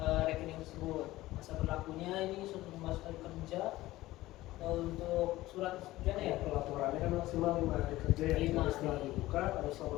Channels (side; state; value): right; quieter; 17.1 dB